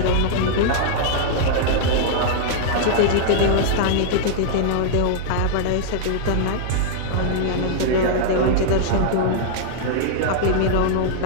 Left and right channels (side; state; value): both; different; correlation -0.01